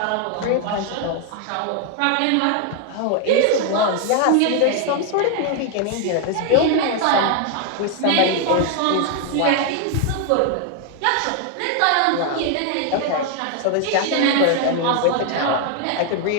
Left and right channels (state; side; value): different; both; correlation 0.00